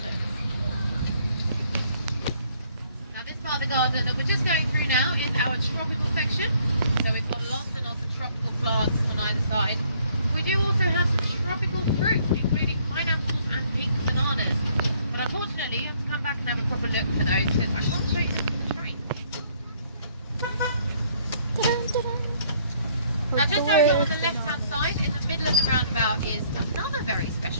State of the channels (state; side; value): inverted; both; correlation -0.63